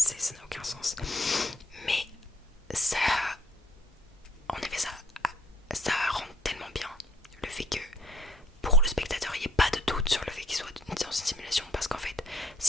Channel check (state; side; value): normal; both; correlation 0.63